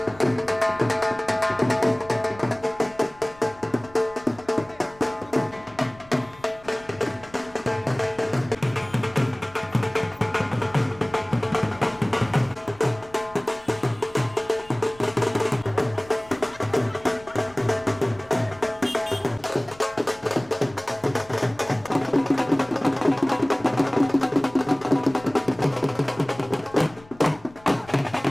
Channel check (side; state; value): left; noise; rumble, 24 dB below the sound